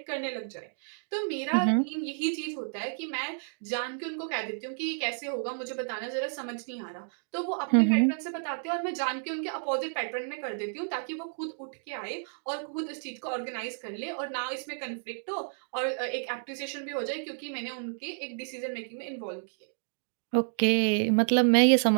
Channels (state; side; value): silent; left; digital silence